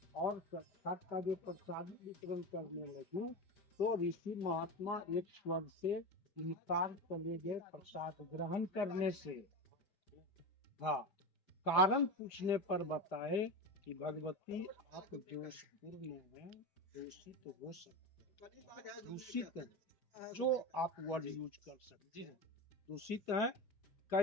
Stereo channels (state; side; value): late; right; 4.9 ms